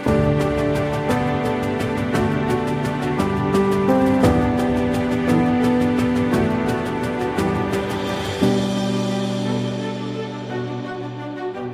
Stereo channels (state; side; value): identical; both; correlation 1.00